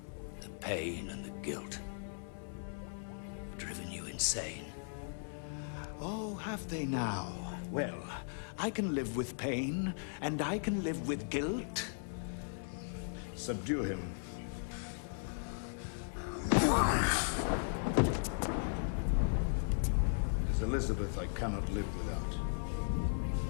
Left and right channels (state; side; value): silent; right; 53 dB below the other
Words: The pain and the guilt have driven you insane. Oh, have they now? Well, I can live with pain, and I can live with guilt. Subdue him. It is Elizabeth I cannot live without.